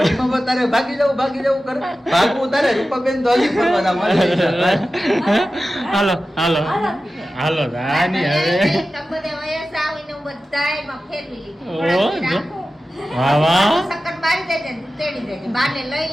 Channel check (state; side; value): normal; both; correlation 0.94